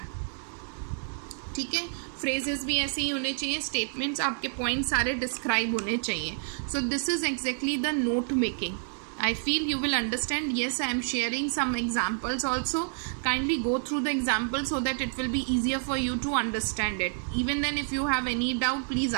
ठीक है, फ्रेजेस भी ऐसे ही होने चाहिए. स्टेटमेंट्स, आपके पॉइंट सारे डिस्क्राइब होने चाहिए. So this is exactly the note making. I feel you will understand. Yes, I am sharing some examples also. Kindly go through the examples so that it will be easier for you to understand it. Even then, if you have any doubt, please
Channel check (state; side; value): silent; left; digital silence